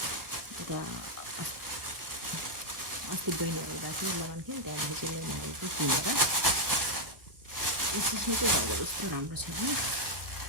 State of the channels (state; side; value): late; left; 1.2 ms